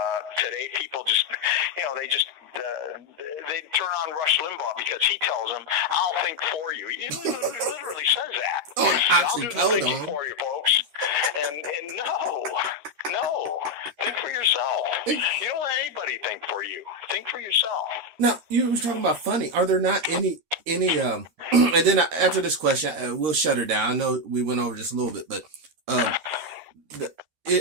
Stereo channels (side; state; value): left; late; 13 ms